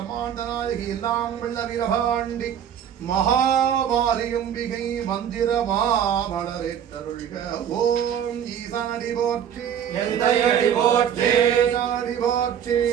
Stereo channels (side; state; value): left; quieter; 9.2 dB